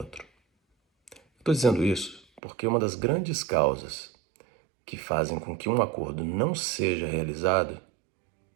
Estou dizendo isso porque uma das grandes causas que fazem com que um acordo não seja realizado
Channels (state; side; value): drops out; left; at 2.4 s